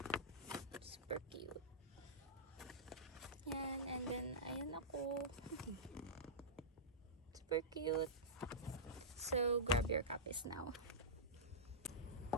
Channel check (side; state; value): both; normal; correlation -0.15